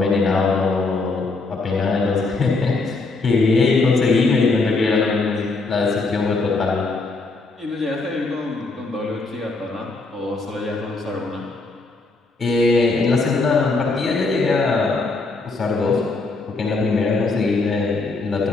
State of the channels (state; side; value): quieter; right; 3.6 dB